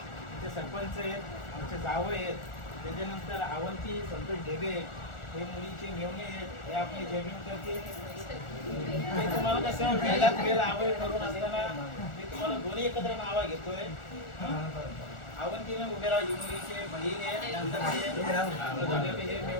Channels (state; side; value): late; right; 1.4 ms